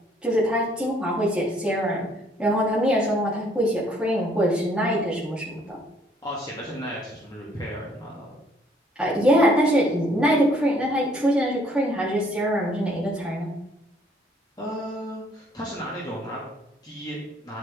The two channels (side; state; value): both; normal; correlation 0.63